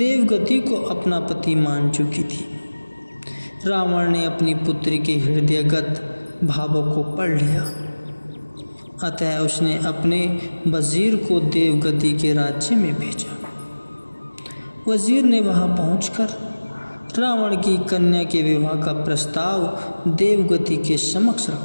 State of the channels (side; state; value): both; inverted; correlation -1.00